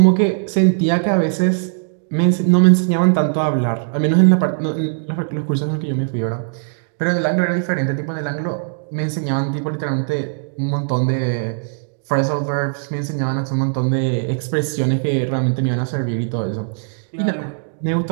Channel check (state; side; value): silent; left; digital silence